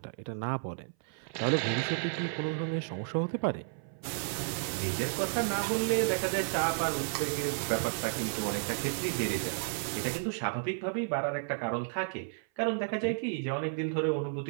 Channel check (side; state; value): left; silent; 56 dB below the other